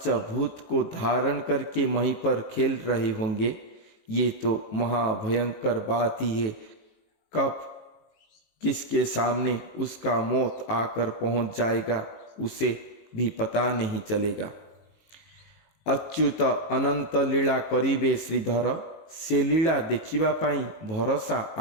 को धारण करके वहीं पर खेल रहे होंगे। ये तो महाभयंकर बात ही है। कब किसके सामने उसका मौत आकर पहुंच जाएगा उसे भी पता नहीं चलेगा। अच्युत अनंत लीला करिबे श्रीधर, से लीला देखिबा पाई भरोसा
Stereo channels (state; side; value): late; right; 19 ms